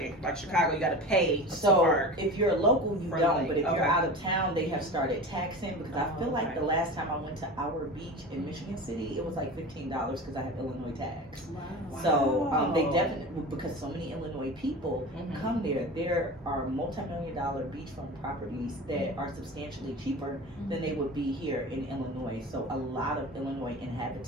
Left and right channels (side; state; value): both; normal; correlation 0.32